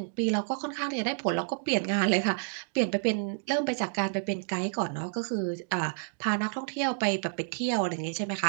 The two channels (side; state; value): left; silent; 58 dB below the other